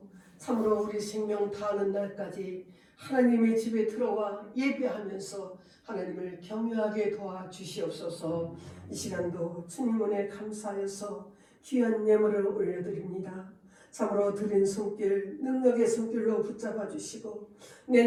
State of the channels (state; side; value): identical; both; correlation 1.00